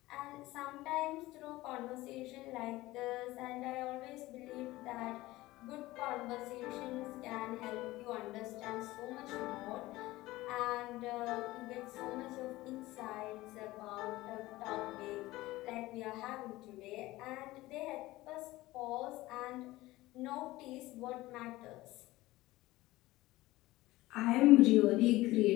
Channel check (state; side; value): quieter; right; 18.3 dB